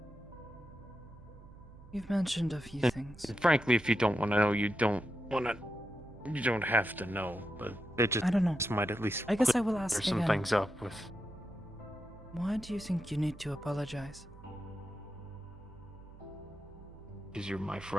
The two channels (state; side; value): noise; right; hum, 19 dB below the sound